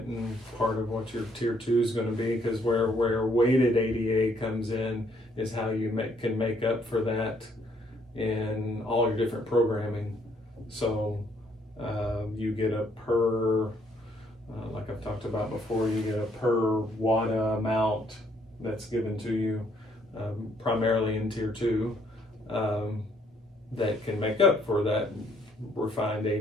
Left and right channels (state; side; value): normal; both; correlation 0.68